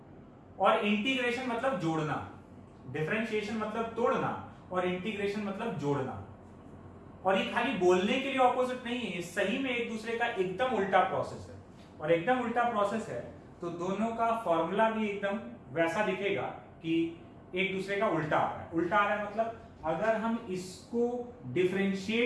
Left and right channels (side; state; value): both; identical; correlation 1.00